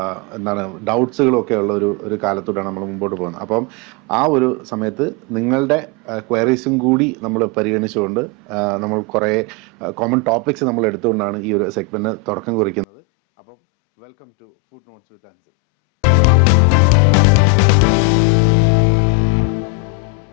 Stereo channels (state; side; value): drops out; right; at 12.9 s